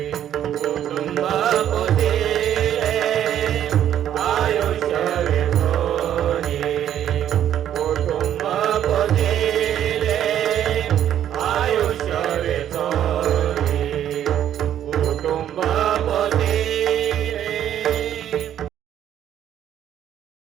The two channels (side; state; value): left; quieter; 10.6 dB